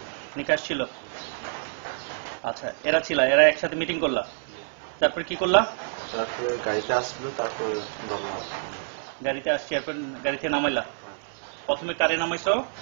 নিকাশ ছিল। আচ্ছা, এরা একসাথে মিটিং করলা, তারপর কি করলা? তারপরে গাড়িতে আসলো, তারপর গাড়িতে আসছি, এরপর গাড়িতে নামাইলা। প্রথমে কারে নামাইছো?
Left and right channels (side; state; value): left; silent; 60 dB below the other